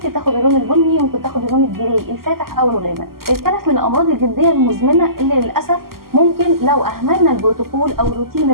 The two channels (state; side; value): late; left; 0.92 ms